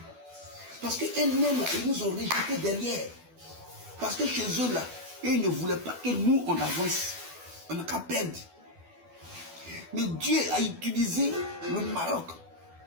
Parce qu'eux-mêmes, ils nous ont rejetés derrière. Parce que chez eux, là, ils ne voulaient pas que nous, on avance. On n'a qu'à perdre. Mais Dieu a utilisé le Maroc.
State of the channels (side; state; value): left; late; 12 ms